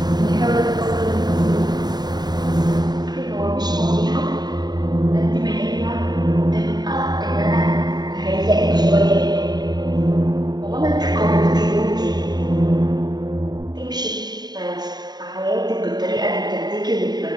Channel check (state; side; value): late; left; 0.20 ms